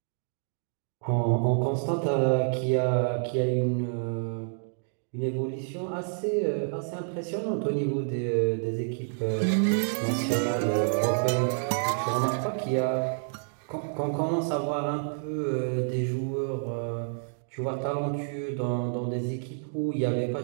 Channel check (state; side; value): silent; left; digital silence